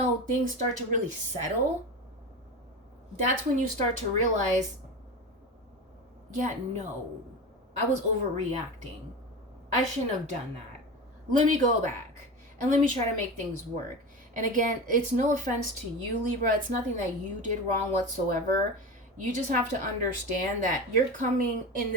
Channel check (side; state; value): both; normal; correlation 0.26